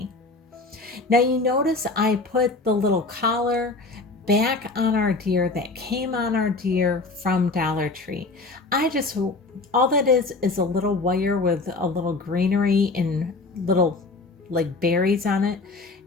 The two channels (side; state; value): right; quieter; 3.6 dB